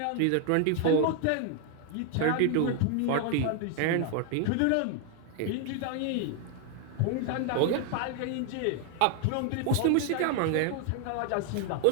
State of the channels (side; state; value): both; different; correlation 0.00